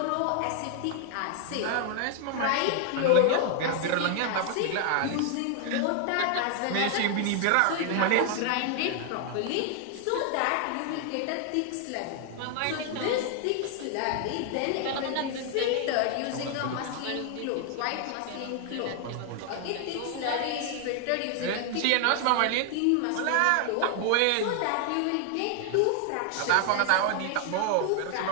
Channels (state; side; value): different; both; correlation 0.00